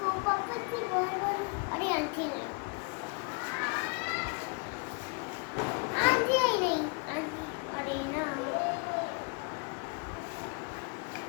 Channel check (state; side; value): quieter; right; 33.8 dB